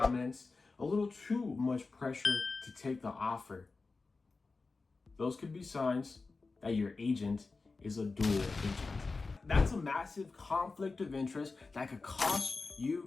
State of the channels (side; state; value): right; quieter; 3.9 dB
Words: a little too much pressure to take the offer. Those could be signs that your agent is a dual agent. That's a massive conflict of interest that could cost